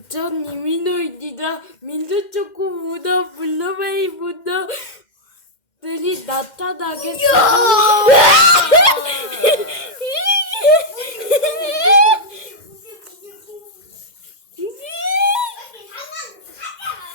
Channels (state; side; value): late; right; 2.1 ms